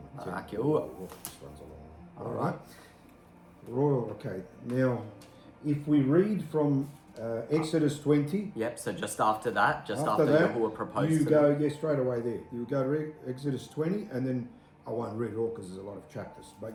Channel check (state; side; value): identical; both; correlation 1.00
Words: Barak Yahuwah. This one's a long one. All right. Royal, okay. Now, if we read from Exodus 20, Yep, so just after that, that, Yahuwah proposed you to go, them. yeah, straight away there. You go to Exodus 20, and then I won't read it all because there's a lot of chapters,